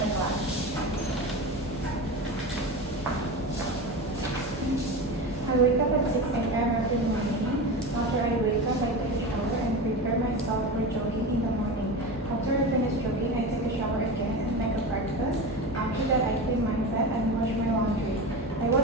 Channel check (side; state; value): both; normal; correlation 0.26